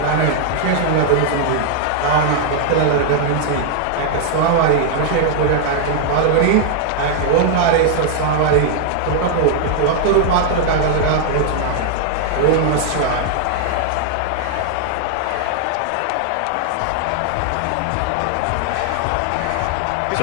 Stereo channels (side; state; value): both; different; correlation -0.01